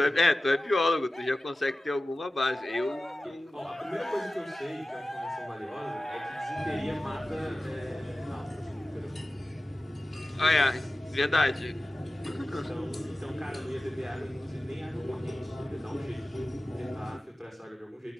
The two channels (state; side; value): normal; both; correlation 0.96